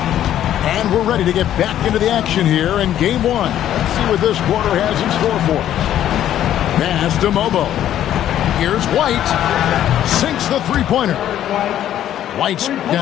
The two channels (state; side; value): quieter; right; 11.4 dB